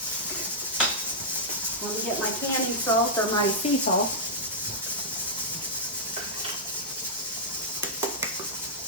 Let me get my canning salt or my sea salt.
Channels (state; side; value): normal; both; correlation -0.10